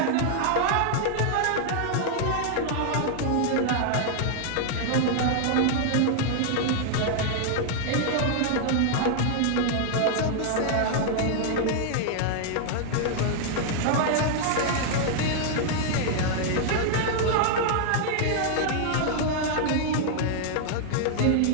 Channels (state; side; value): different; both; correlation -0.01